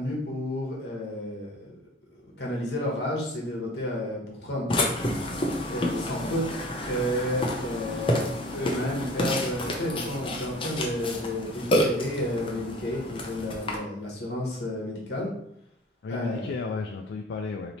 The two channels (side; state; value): both; normal; correlation 0.45